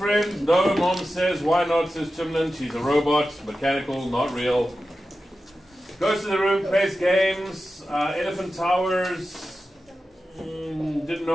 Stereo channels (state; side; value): normal; both; correlation 0.92